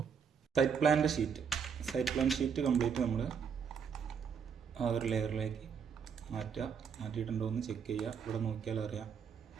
സൈറ്റ് പ്ലാൻ ഷീറ്റ് കംപ്ലീറ്റ് നമ്മൾ ആ ഒരു ലെയറിലേക്ക് മാറ്റിയിട്ടുണ്ടോ എന്ന് ചെക്ക് ചെയ്യുക. ഇവിടെ നോക്കിയാൽ അറിയാം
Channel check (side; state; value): left; quieter; 6.9 dB